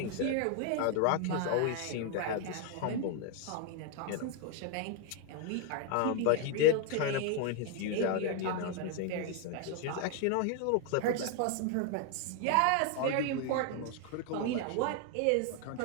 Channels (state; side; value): different; both; correlation 0.00